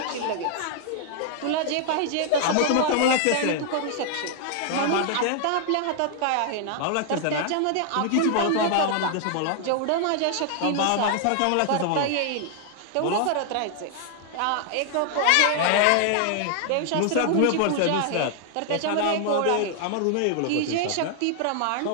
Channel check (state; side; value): different; both; correlation 0.00